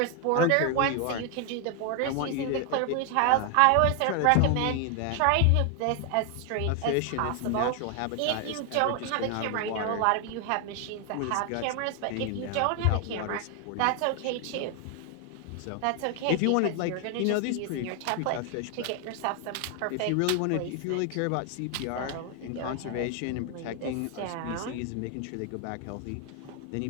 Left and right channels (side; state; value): both; different; correlation 0.00